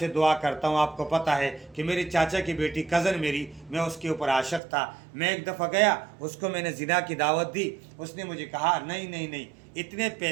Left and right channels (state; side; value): drops out; left; at 4.6 s